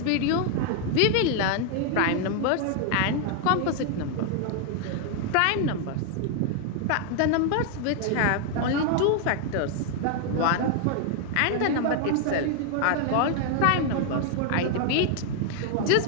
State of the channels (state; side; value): different; both; correlation 0.00